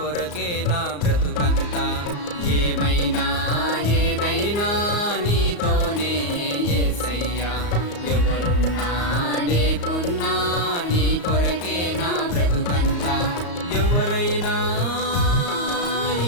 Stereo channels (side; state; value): right; late; 34 ms